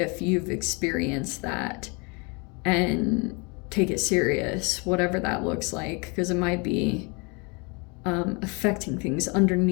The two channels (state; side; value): quieter; right; 31.0 dB